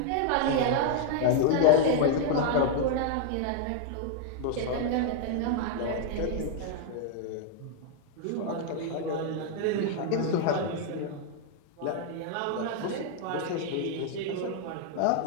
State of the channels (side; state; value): both; different; correlation 0.00